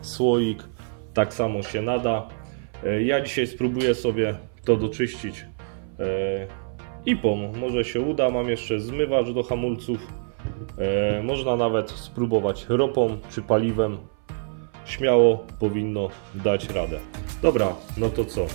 słoik, tak samo się nada. Ja dzisiaj spróbuję sobie to doczyścić IPą. Może się uda. Mam jeszcze zmywacz do hamulców. Można nawet spróbować ropą czy paliwem. Śmiało powinno dać radę. Dobra, no to co?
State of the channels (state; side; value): silent; left; 58 dB below the other